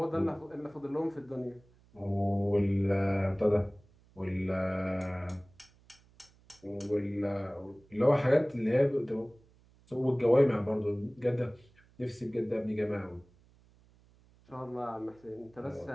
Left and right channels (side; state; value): right; noise; hum, 29 dB below the sound